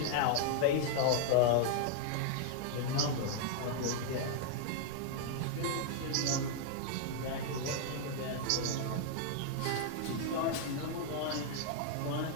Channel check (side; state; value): both; different; correlation 0.00